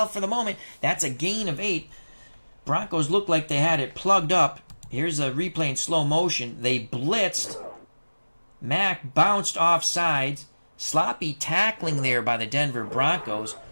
for the moment. That's a gain of 8. Broncos looked like they had it plugged up. Here's a replay in slow motion. They blitzed. Mack bounced off sides. Sloppy tackling there by the Denver Broncos.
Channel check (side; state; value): both; inverted; correlation -1.00